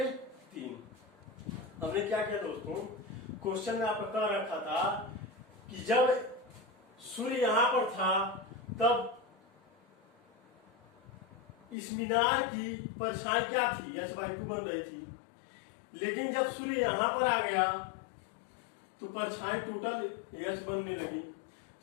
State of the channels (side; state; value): right; drops out; at 11.8 s